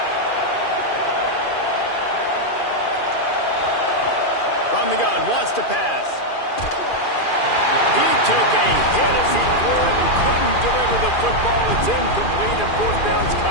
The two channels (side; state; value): right; late; 2.4 ms